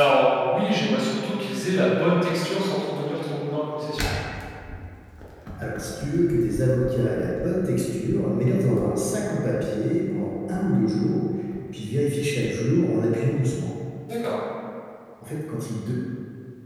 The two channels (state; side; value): identical; both; correlation 1.00